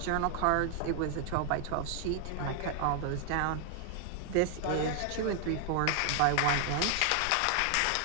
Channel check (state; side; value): different; both; correlation 0.00